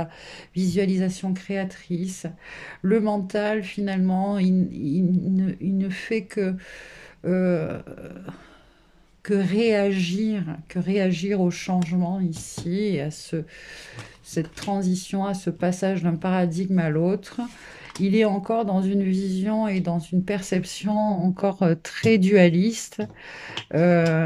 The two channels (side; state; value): both; identical; correlation 1.00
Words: visualisation créatrice. Le mental, finalement, il ne fait euh, que réagir au changement ici, et à cette transition, à ce passage d'un paradigme à l'autre. Il est encore dans une vision et dans une perception encore très dualiste.